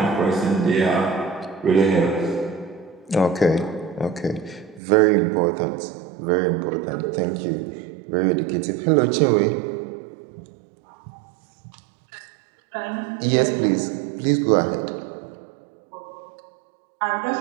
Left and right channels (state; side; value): drops out; left; at 4.8 s